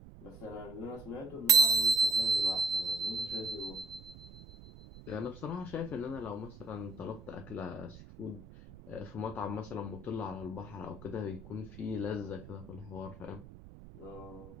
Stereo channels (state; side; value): noise; right; rumble, 17 dB below the sound